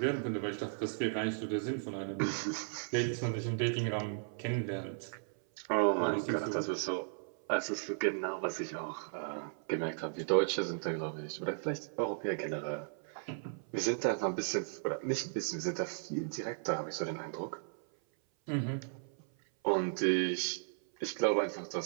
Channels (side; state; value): left; silent; 54 dB below the other